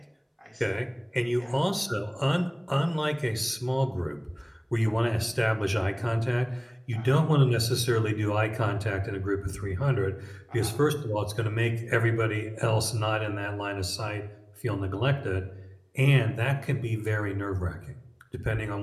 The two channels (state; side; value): identical; both; correlation 1.00